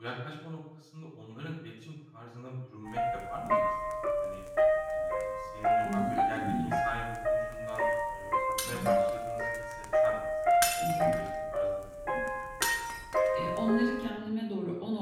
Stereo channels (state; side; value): identical; both; correlation 1.00